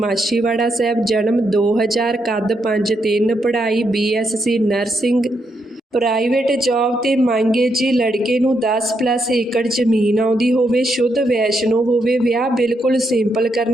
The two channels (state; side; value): normal; both; correlation 0.80